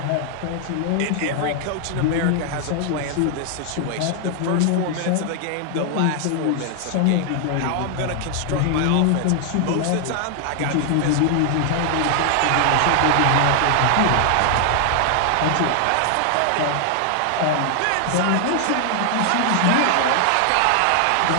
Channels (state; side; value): different; both; correlation 0.00